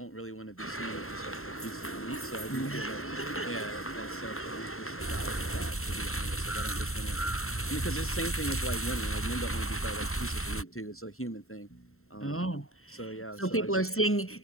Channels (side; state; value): right; late; 0.62 ms